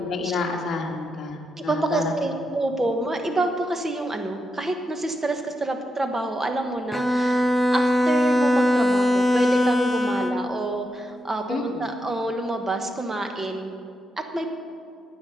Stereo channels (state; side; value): normal; both; correlation 0.85